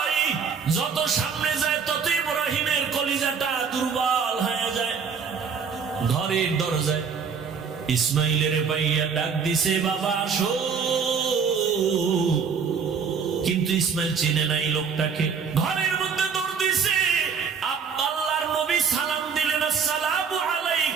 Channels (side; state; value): left; quieter; 6.1 dB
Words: যত সামনে যায় তত ইব্রাহিমের কলিজাটা দুর্বল হয়ে যায়। ঘরের দরজায় ইসমাইলের পাইয়া ডাক দিছে, বাবা আসো। কিন্তু ইসমাইল চিনে নাই লোকটাকে। ঘরের মধ্যে দৌড় দিছে। আল্লাহর নবী সালাম দিলেন, আসসালামু